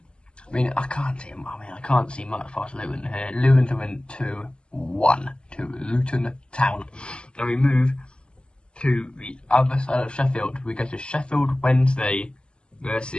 I mean, I can't see much past Luton here. Luton to win 2-1 to Luton Town. Now we move to the other side of Sheffield. We go to Sheffield Wednesday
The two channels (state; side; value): late; right; 0.050 ms